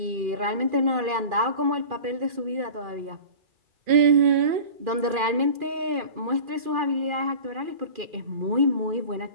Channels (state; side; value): late; left; 2.4 ms